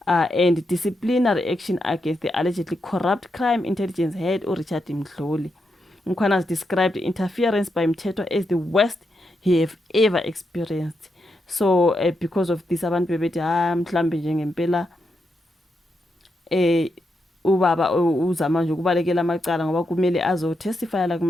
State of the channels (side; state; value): both; normal; correlation 0.84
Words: and disciplinary action against the allegedly corrupt crime intelligence head uRichard Mdluli. Mkhwana has described interference by Mthethwa as the worst he have ever experienced. So because of this abantu bebethi mhlambe nje ngempela ubaba uzama nje ukubalekela amacala ngoba kumele azotestify la